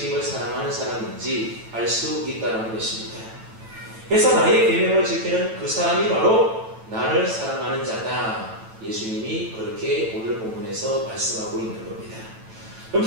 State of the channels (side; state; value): left; late; 9.0 ms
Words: 사랑하는 사람인지 알 수 있다는 것입니다. 그래서 나의 계명을 지키는 그 사람이 바로 나를 사랑하는 자다. 예수님이 그렇게 오늘 본문에서 말씀하고 있는 겁니다.